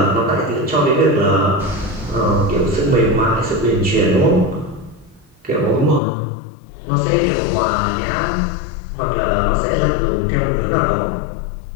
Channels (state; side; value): drops out; right; at 6.0 s